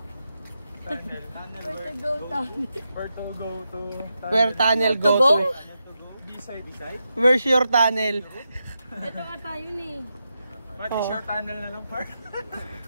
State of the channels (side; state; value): both; inverted; correlation -0.87